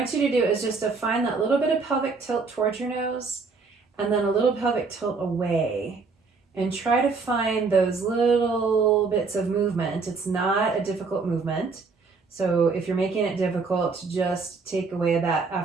you to do is just to find that little bit of pelvic tilt towards your nose and then a little pelvic tilt away. And try to find those little bits of movement. It's not a difficult movement. So if you're making it difficult, just take away that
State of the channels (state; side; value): quieter; left; 4.4 dB